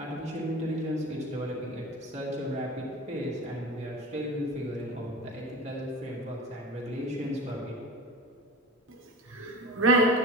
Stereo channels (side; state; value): both; normal; correlation 0.33